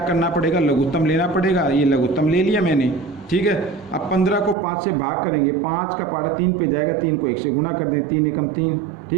पड़ेगा, लघुत्तम लेना पड़ेगा। ये लघुत्तम ले लिया मैंने, ठीक है। अब 15 को 5 से भाग करेंगे, 5 का पारा 3 पे जाएगा, 3 को 1 से गुना कर दें, 3 एकम 3,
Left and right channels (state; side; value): drops out; left; at 4.5 s